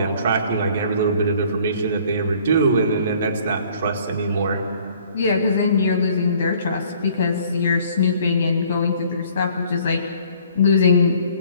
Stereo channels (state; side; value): inverted; both; correlation -0.57